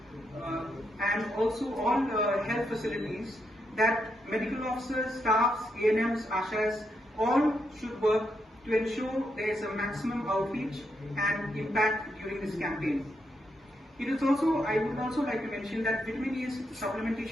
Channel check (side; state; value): both; normal; correlation 0.81